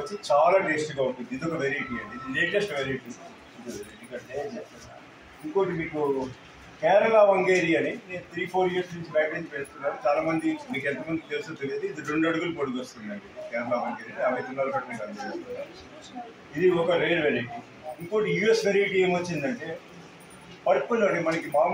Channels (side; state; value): both; identical; correlation 1.00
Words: చాలా టేస్ట్గా ఉంటుంది. ఇది ఒక వెరైటీ అండి, ఇది లేటెస్ట్ వెరైటీ. ఇంకోటి మీకు కేరళ వంగేరి అని నేను 3-4 ఇయర్స్ నుంచి బయట నుంచి పెడుతున్నాను. చాలా మంది మీకు ఎంతమంది తెలుసో తెలియదు. ఇది 2 అడుగులు పొడుగు వస్తుందండి కేరళ వంగేరి. 50 తులాల కట్టిన ఇది ఒక రేర్ వెరైటీ. ఇంకోటి యూఎస్ వెరైటీ ఏమొచ్చిందంటే పర్పుల్ అండి. మనకి